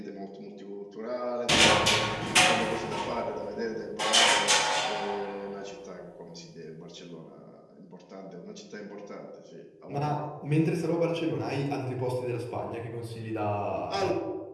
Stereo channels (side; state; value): both; identical; correlation 1.00